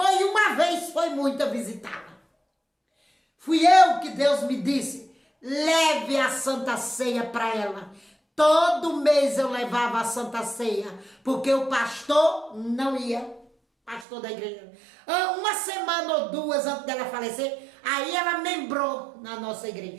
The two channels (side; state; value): left; drops out; at 14.1 s